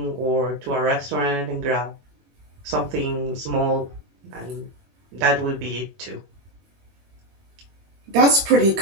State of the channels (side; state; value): left; late; 21 ms